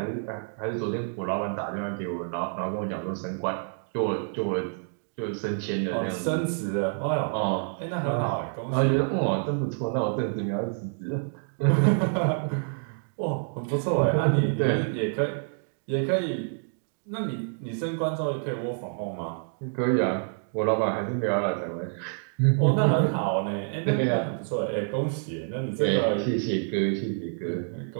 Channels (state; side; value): silent; left; 57 dB below the other